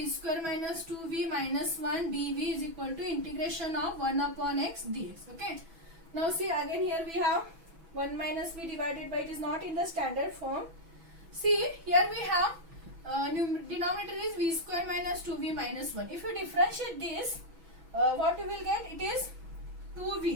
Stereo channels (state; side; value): late; left; 6.1 ms